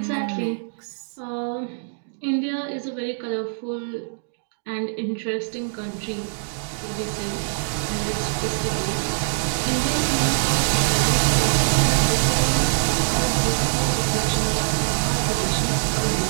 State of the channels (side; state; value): left; silent; digital silence